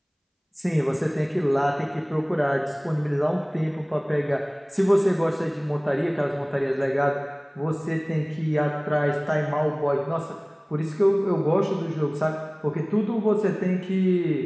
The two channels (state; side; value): identical; both; correlation 1.00